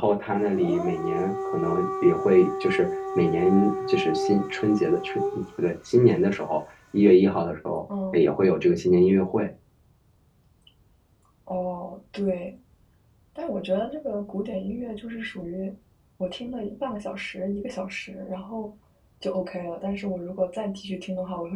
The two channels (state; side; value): identical; both; correlation 1.00